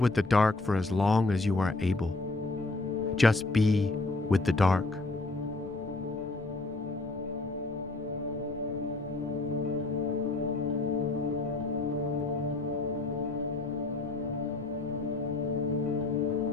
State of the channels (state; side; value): quieter; right; 3.2 dB